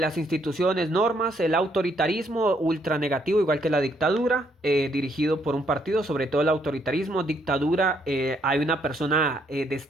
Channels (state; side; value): normal; both; correlation 0.71